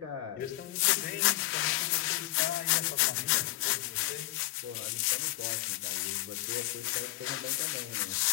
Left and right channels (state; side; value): quieter; right; 16.8 dB